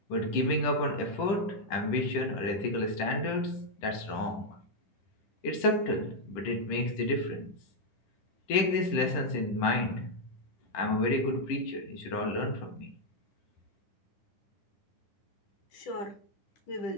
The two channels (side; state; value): right; late; 10 ms